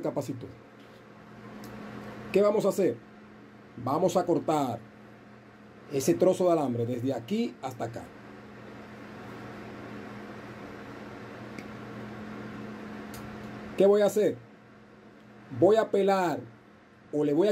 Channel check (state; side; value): identical; both; correlation 1.00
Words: capacitor. ¿Qué vamos a hacer? Vamos a cortar ese trozo de alambre desde aquí hasta acá. ¿Qué voy a hacer? Voy a pelar o le voy